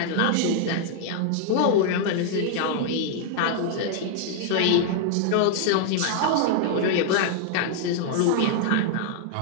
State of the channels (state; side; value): different; both; correlation 0.00